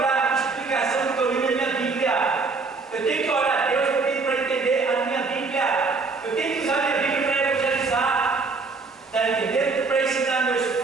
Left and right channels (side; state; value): left; quieter; 4.2 dB